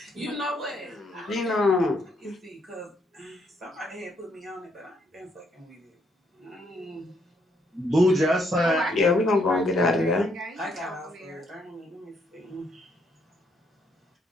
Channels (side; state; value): both; normal; correlation 0.72